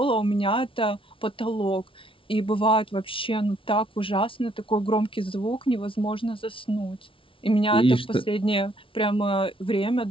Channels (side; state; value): right; late; 0.25 ms